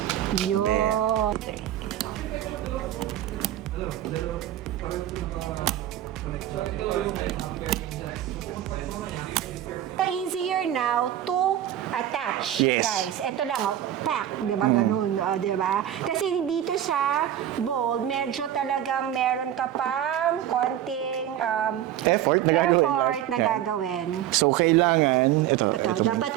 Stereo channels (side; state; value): left; quieter; 11.6 dB